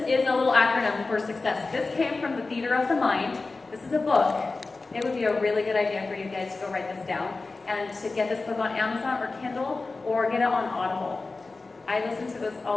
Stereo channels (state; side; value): quieter; right; 3.7 dB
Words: is a little acronym for success. This came from the Theater of the Mind. This is a book. It would be a really good idea for you guys to go write this down and to get this book on Amazon or Kindle or get it on Audible. I listen to this